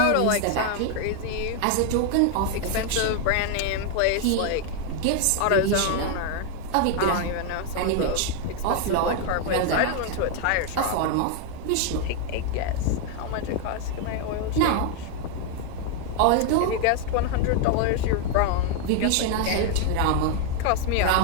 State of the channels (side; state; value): both; different; correlation 0.00